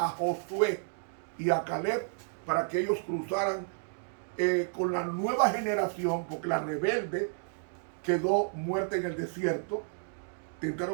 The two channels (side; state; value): left; silent; digital silence